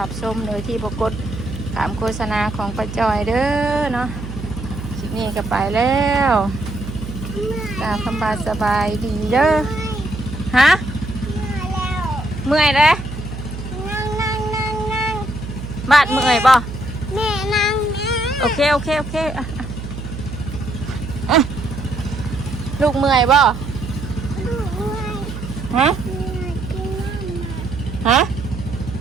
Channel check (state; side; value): noise; right; hum, 8 dB below the sound